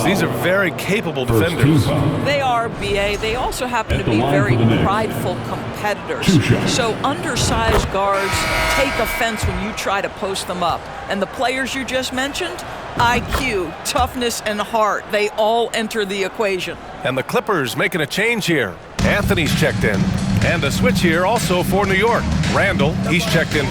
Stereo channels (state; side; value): identical; both; correlation 1.00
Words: These are very capable defenders. They are, B.A. They also happen to be very prideful competitors. So undersized guards take offense when you try to post them up. And the players you just mentioned, IQ, toughness, and heart, they all enter the equation. And the Clippers making a change here. Anthony's checked in. And a switch here also for New York. Randall, he's checked in